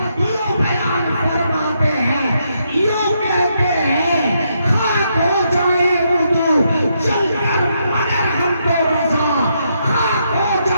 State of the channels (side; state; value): both; inverted; correlation -0.78